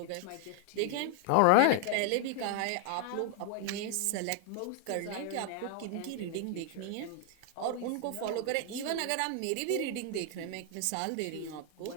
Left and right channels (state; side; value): different; both; correlation 0.00